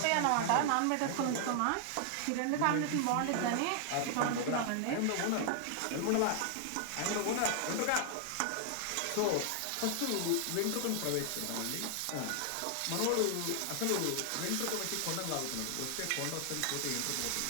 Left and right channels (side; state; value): both; different; correlation 0.00